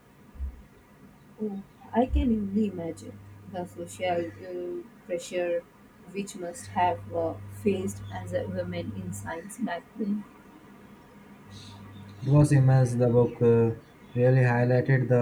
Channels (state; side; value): identical; both; correlation 1.00